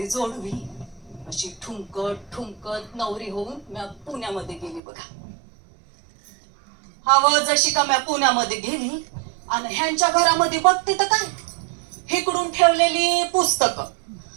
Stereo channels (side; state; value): left; drops out; at 4.8 s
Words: जोडवी, अशी ठुमकत ठुमकत नवरी होऊन मी पुण्यामध्ये गेली बघा. जशी का मी पुण्यामध्ये गेली आणि ह्यांच्या घरामध्ये बघते तर काय, इकडून ठेवलेली पुस्तकं,